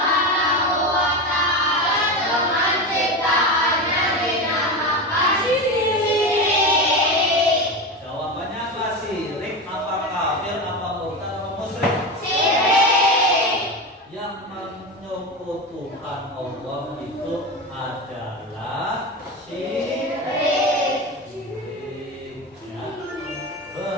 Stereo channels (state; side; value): normal; both; correlation 0.21